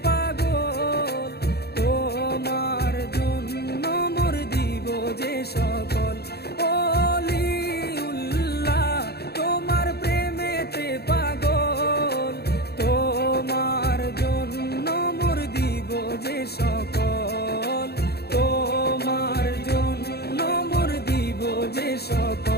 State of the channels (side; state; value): right; late; 0.47 ms